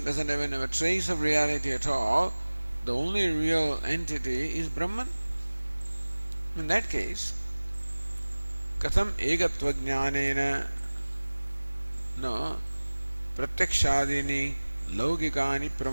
doesn't even have a trace of reality at all. The only real entity is Brahman. In that case, katham egatva jnanena no pratyakshadini laukikani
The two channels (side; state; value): both; inverted; correlation -1.00